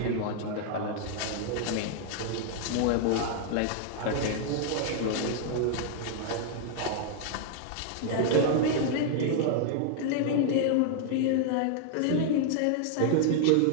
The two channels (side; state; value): both; different; correlation 0.00